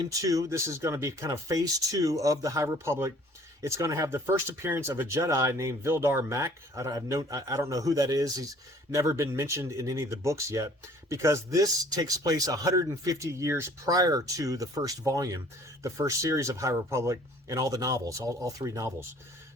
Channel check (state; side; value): normal; both; correlation 0.54